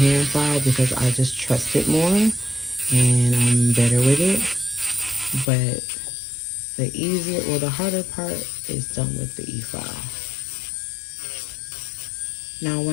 file because I just trust it more and I'm better with it. But the easier or the harder part is done with the e-file. Now,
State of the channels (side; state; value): right; drops out; at 5.5 s